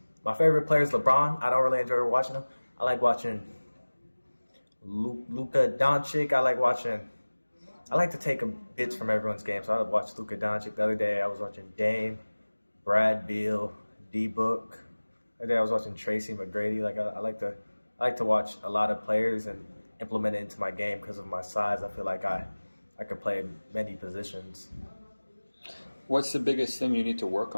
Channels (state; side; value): inverted; both; correlation -1.00